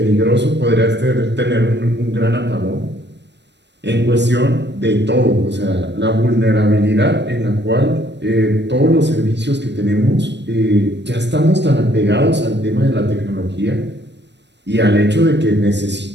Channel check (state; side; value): late; left; 0.51 ms